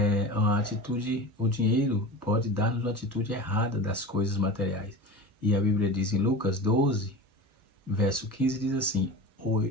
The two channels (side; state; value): both; normal; correlation 0.31